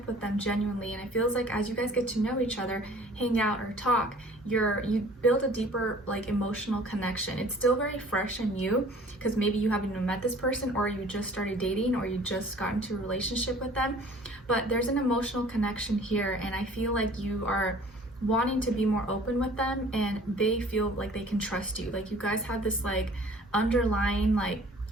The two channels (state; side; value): normal; both; correlation 0.50